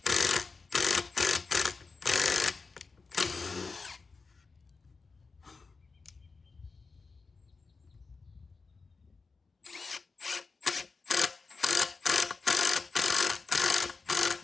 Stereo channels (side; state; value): right; quieter; 4.4 dB